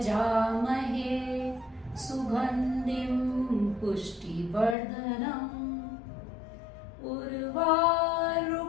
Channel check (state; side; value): drops out; right; at 4.8 s